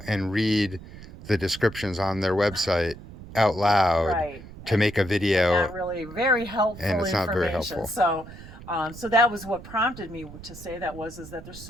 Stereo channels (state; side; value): noise; right; rumble, 16 dB below the sound